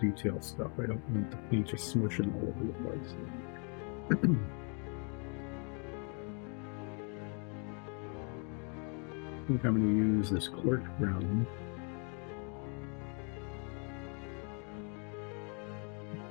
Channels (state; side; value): quieter; right; 38.5 dB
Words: stuff. I don't want the paint just smushing all over the place. I think I'm going to use this cork brown.